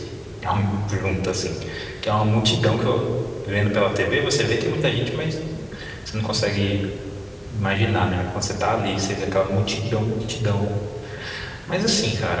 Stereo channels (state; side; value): identical; both; correlation 1.00